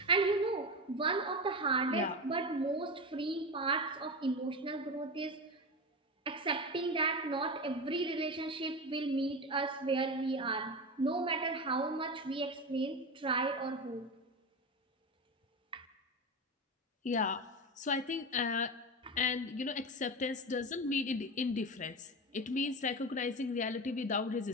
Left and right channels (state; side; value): normal; both; correlation 0.22